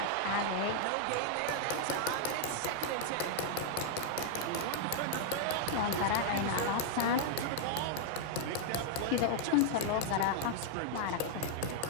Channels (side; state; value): both; different; correlation -0.01